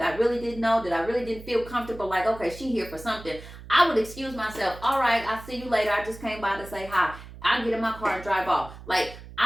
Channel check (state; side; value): noise; right; hum, 16 dB below the sound